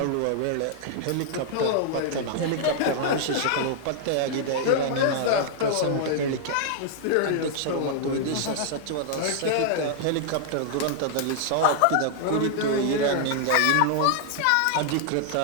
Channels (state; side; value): different; both; correlation -0.01